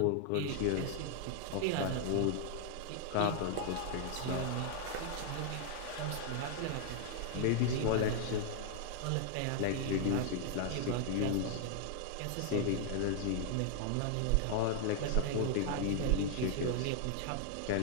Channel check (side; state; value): both; different; correlation 0.00